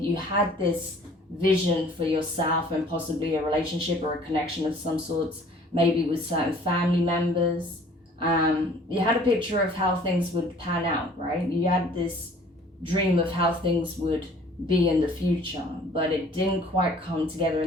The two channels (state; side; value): normal; both; correlation 0.53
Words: had this vision for yourself and possibly a relationship or a connection of some sorts, maybe with certain family members. You had a picture of how things would pan out, right? You had this dream of how things would be in the future, but it didn't quite come together